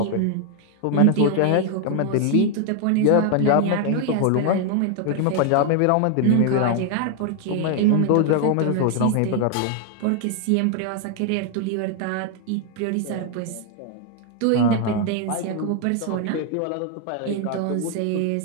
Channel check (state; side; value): different; both; correlation 0.00